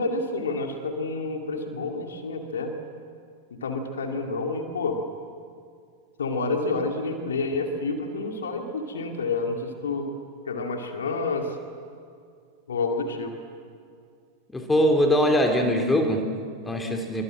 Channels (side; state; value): both; normal; correlation 0.13